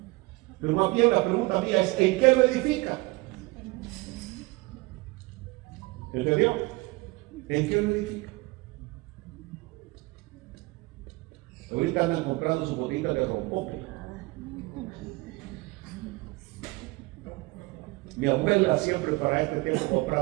Pero más bien la pregunta mía es, ¿en qué lo edifica? ¿Entendió? ¿En qué lo edifica? Ahorita andan comprando su botita de rompope. Mi abuela siempre para este tiempo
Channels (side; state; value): left; quieter; 23.7 dB